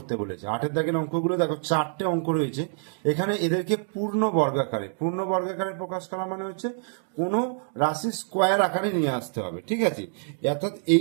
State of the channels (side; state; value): left; silent; 61 dB below the other